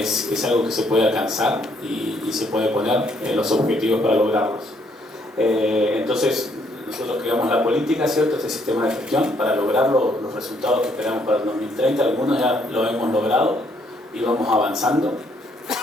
algo que se puede alcanzar y se puede poner los objetivos para lograrlos. Entonces, nosotros creamos la política, ¿cierto? Este sistema de gestión para lograr los resultados que esperamos para el 2030. Algunos ya lo hemos logrado y vamos avanzando.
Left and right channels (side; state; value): both; normal; correlation 0.69